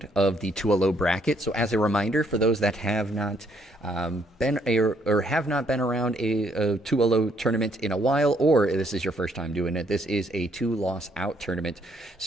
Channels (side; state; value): both; normal; correlation 0.70